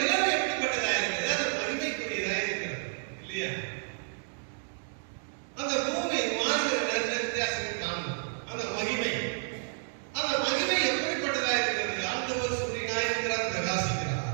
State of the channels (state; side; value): silent; left; digital silence